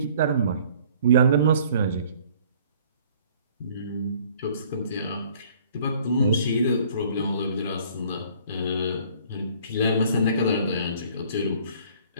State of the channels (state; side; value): inverted; both; correlation -0.56